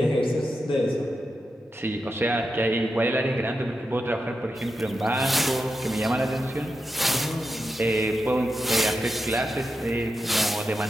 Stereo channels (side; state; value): both; normal; correlation 0.88